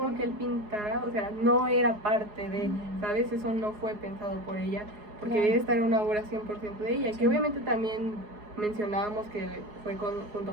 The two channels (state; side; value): late; left; 4.8 ms